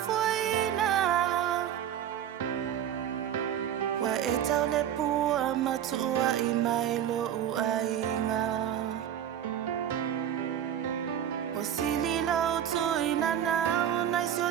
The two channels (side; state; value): left; quieter; 10.0 dB